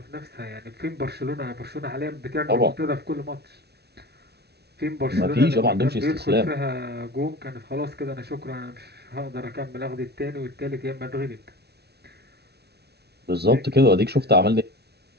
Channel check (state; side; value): late; left; 0.48 ms